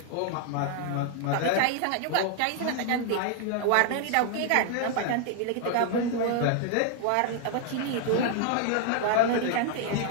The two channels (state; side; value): different; both; correlation 0.00